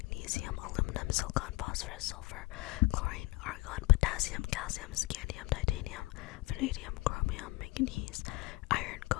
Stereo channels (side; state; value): right; quieter; 22.2 dB